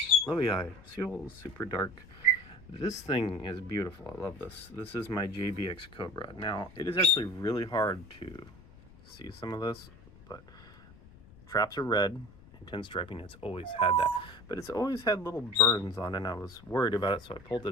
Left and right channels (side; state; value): left; noise; rumble, 22 dB below the sound